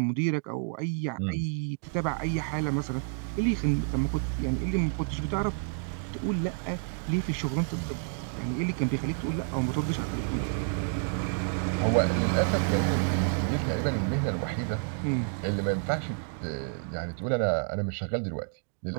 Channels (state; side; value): silent; left; 58 dB below the other